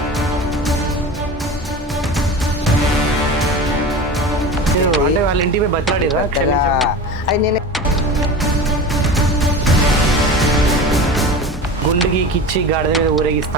అంటే వాళ్ళ ఇంటికి పోయి బతిలాడిరా? అది నేను గుండెకి కిచ్చి గాడిద మీద ఊరేగిస్తా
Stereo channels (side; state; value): both; normal; correlation 0.31